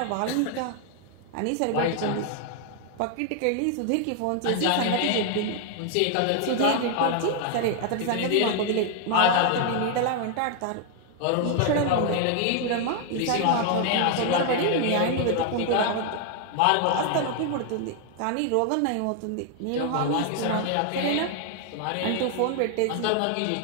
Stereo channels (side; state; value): both; different; correlation 0.00